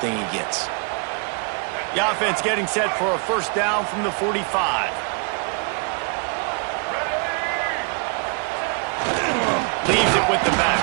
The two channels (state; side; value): quieter; left; 37.5 dB